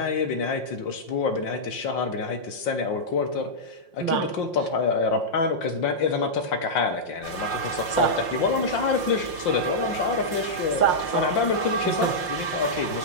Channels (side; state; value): right; late; 5.7 ms